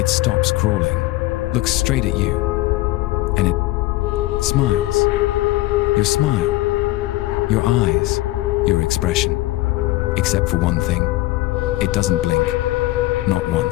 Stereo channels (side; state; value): right; quieter; 18.4 dB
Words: stops crawling, looks straight at you, and it smiles. Your smile, your eyes, your expression. Except for one thing. It doesn't blink. Not